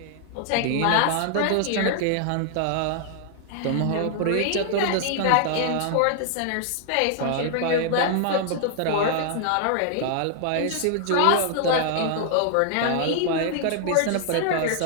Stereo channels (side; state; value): both; different; correlation -0.01